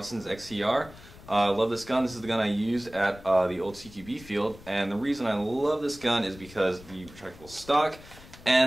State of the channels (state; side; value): noise; left; rumble, 19 dB below the sound